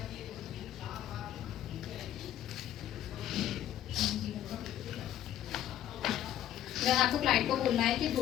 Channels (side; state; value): right; quieter; 11.9 dB